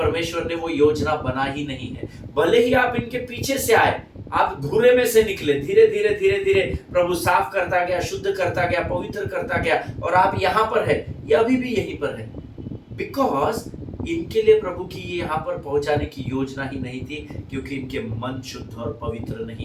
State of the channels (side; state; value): both; identical; correlation 1.00